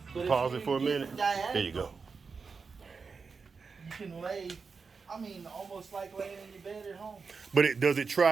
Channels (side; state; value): left; quieter; 5.0 dB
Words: But if Pause you it for a get minute. diagonal, There you go. You can lay, almost like laying in your bed at home. But does it